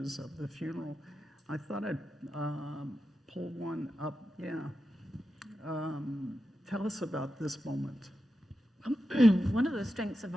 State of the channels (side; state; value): both; normal; correlation 0.90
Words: of the funeral. I thought I'd pull one up. Yeah. Tell us about this moment. One of the strengths of